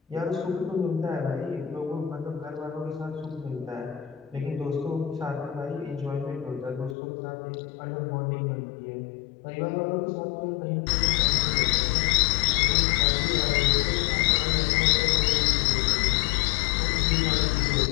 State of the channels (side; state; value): right; drops out; at 7.0 s